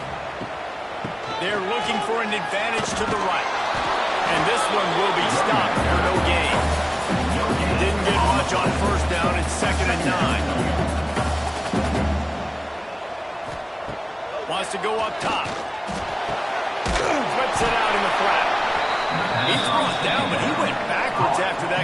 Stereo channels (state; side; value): identical; both; correlation 1.00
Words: They're looking for an advantage to the right. And this one will be stopped for no gain. Didn't get much on first down. It's 2nd and 9. Wants to go up top. Flips it out in the flat. He's brought down, but he went backwards after